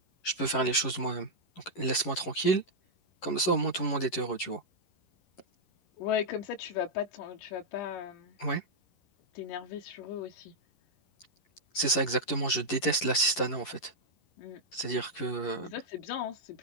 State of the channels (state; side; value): late; right; 11 ms